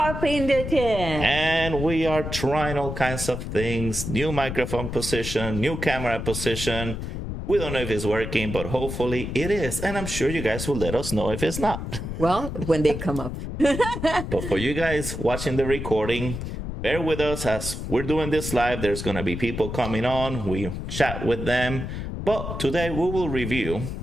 the tin. And we are trying all kinds of things. New microphone position, new camera position. We don't know if it's working, but hopefully it is. And I'm sure you guys will let us know if it's not. Well, when they come up. But for you guys watching the recording, bear with us as we're doing this live. There's going to be people coming on. We chat with them. But today we will review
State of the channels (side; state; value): left; noise; rumble, 6 dB below the sound